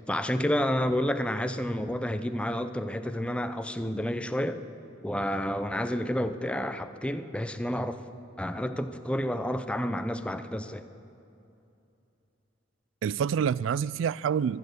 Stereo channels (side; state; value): both; normal; correlation 0.72